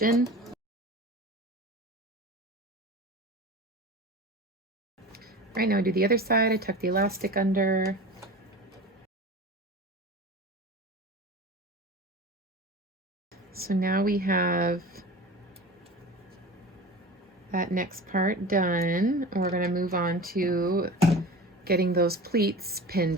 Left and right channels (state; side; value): normal; both; correlation 0.34